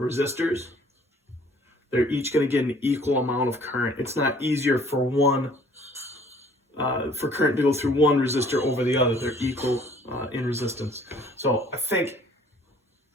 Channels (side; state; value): both; normal; correlation 0.56